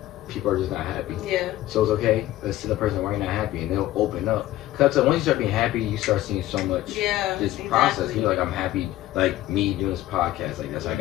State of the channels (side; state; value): right; quieter; 15.0 dB